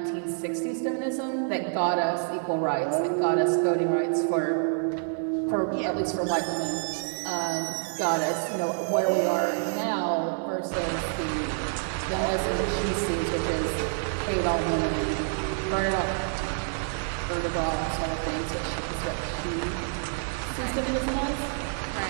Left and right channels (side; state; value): left; silent; digital silence